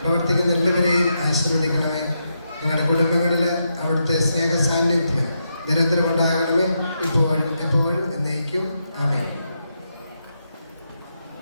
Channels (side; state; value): both; inverted; correlation -0.83